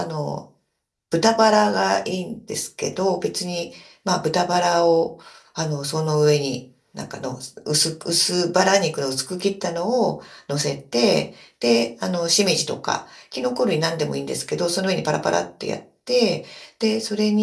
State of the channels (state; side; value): identical; both; correlation 1.00